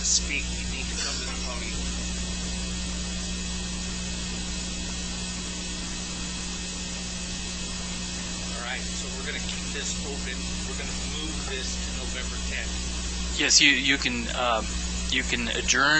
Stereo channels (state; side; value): identical; both; correlation 1.00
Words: speak, you need to come to the podium. this open. We're going to move this to November 10th. Yes, you can